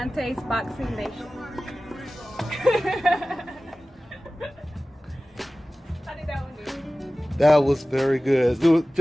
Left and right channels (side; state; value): both; normal; correlation 0.97